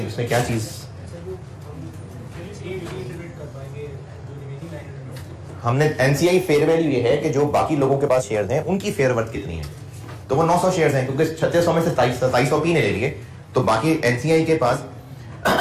उसमें क्या चीज? हमने एनसीआई फेयर वैल्यू ये है कि जो बाकी लोगों के पास शेयर्स हैं उनकी फेयर वर्थ कितनी है। तो वो 900 शेयर्स हैं, क्योंकि 3600 में से 2700 पी ने ले लिए, तो बाकी एनसीआई के पास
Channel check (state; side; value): identical; both; correlation 1.00